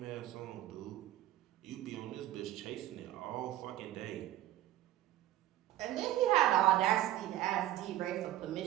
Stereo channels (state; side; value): quieter; left; 14.1 dB